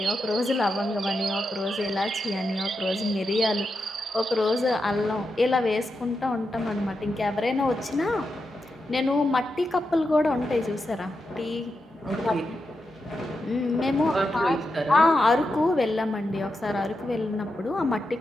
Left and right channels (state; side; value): normal; both; correlation 0.87